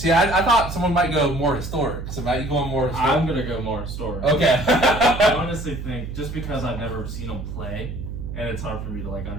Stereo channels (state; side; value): noise; right; hum, 7 dB below the sound